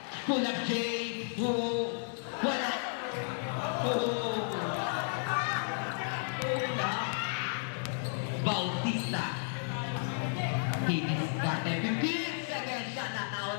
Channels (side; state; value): right; silent; 56 dB below the other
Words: Pull up J. Wala. Bautista. Diniskarte. 15 seconds shot na tao